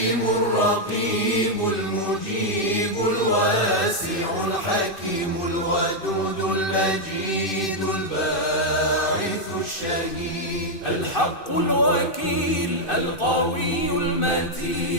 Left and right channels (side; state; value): right; late; 2.6 ms